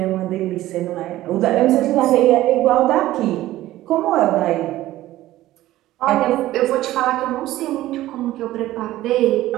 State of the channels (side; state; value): left; quieter; 15.4 dB